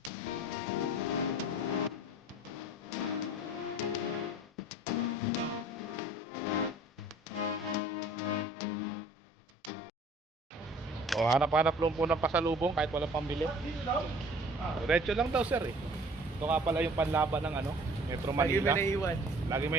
O, hanap-hanap lang po ng pasalubong kahit walang pambili. Diretso lang daw sir eh. Ito nga pala yung panlaban ng ano, Metro Lagi Manila. may naiiwan. Lagi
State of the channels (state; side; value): normal; both; correlation 0.50